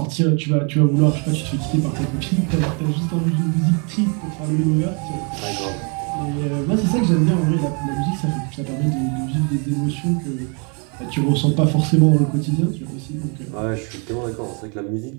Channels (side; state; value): left; quieter; 35.6 dB